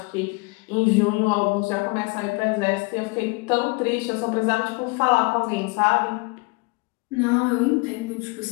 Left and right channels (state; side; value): quieter; right; 28.2 dB